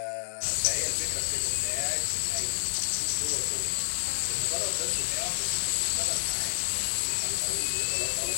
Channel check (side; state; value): right; silent; digital silence